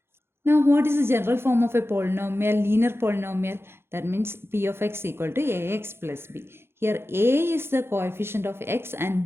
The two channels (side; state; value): left; late; 0.12 ms